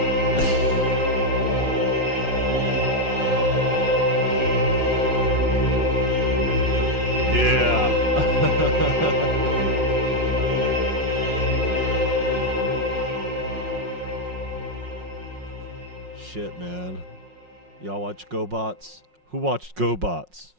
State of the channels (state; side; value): late; left; 5.5 ms